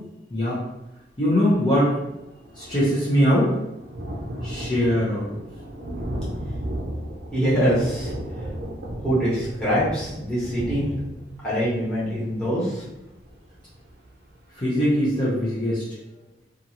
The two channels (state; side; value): normal; both; correlation 0.69